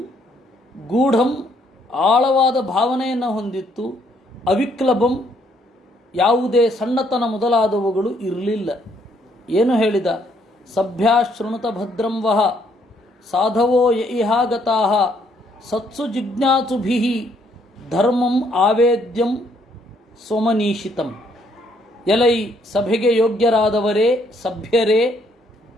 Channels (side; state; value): both; normal; correlation 0.69